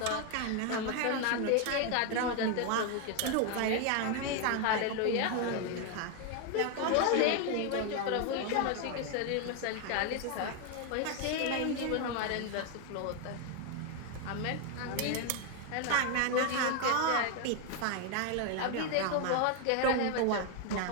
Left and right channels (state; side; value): different; both; correlation 0.01